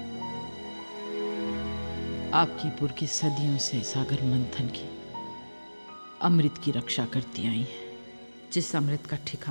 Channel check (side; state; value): both; inverted; correlation -1.00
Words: आपकी पुरखी सदियों से सागर मंथन की अमृत की रक्षा करती आई हैं, जिस अमृत का